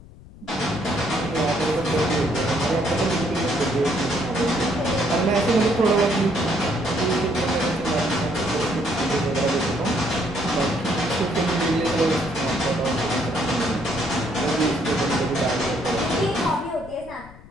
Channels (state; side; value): noise; left; rumble, 20 dB below the sound